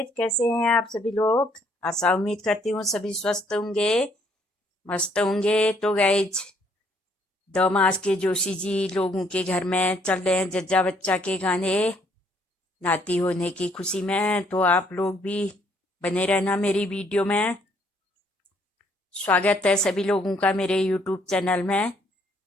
कैसे हैं आप सभी लोग। आशा उम्मीद करती हूँ सभी स्वस्थ होंगे, मस्त होंगे। तो गाइस, दमास के जोशी जी लोगों के घर में चल रहे हैं जज्जा बच्चा के गाने नाती होने की खुशी में। तो आप लोग भी बने रहना मेरी वीडियो में। स्वागत है सभी लोगों का मेरे यूट्यूब चैनल में।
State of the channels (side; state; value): both; normal; correlation 0.67